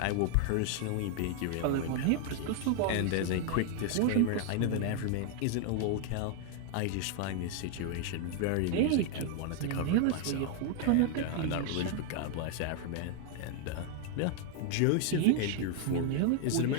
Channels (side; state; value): both; different; correlation 0.00